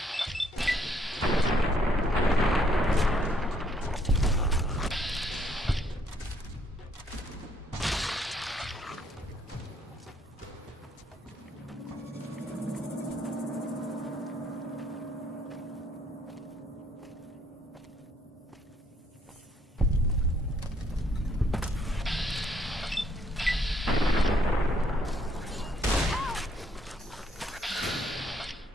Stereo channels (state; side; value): normal; both; correlation 0.68